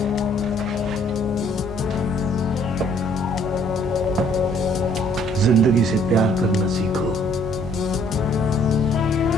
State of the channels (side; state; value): both; normal; correlation 0.62